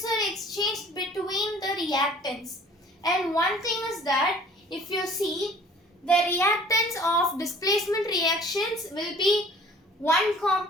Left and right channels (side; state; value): both; normal; correlation 0.50